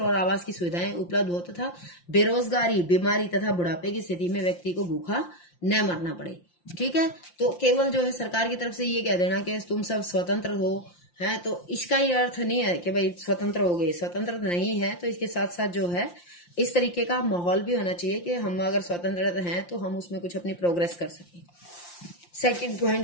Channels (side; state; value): right; late; 5.7 ms